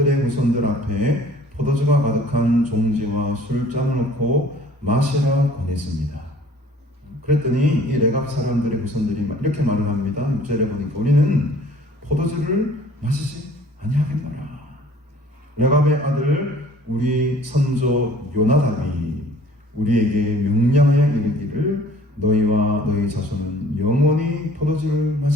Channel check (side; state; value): both; normal; correlation 0.52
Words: 후손들 앞에 포도주가 가득한 종지와 술잔을 놓고 마시라 권했습니다. 그랬더니 이 레갑 사람들의 후손들이 이렇게 말을 합니다. 6절에 보니까 우리는 포도주를 마시지 아니하겠노라. 레갑의 아들 우리 선조 요나답이 우리에게 명령하여 이르기를 너희와 너희 자손은 영원히 포도주를